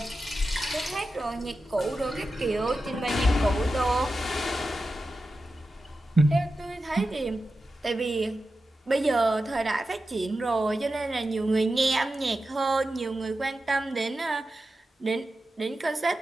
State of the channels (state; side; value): normal; both; correlation 0.92